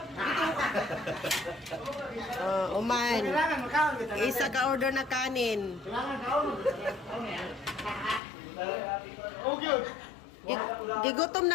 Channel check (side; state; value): right; drops out; at 8.2 s